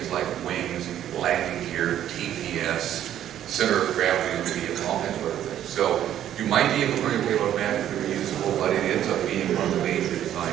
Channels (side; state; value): left; quieter; 11.1 dB